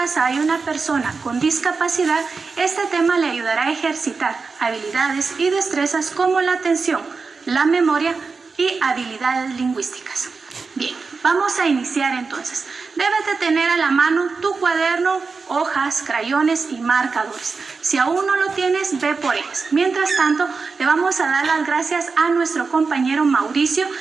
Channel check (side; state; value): left; quieter; 4.6 dB